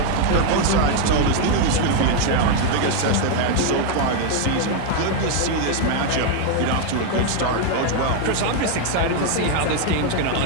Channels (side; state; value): both; different; correlation 0.00